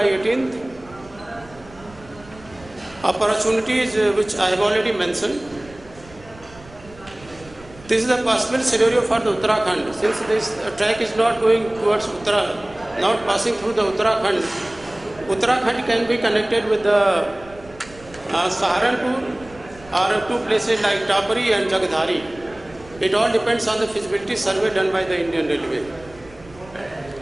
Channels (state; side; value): noise; right; rumble, 22 dB below the sound